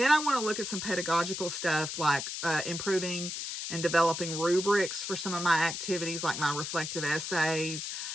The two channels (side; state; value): left; noise; hiss, 5 dB below the sound